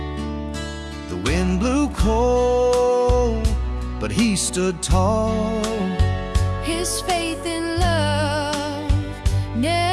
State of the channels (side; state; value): both; identical; correlation 1.00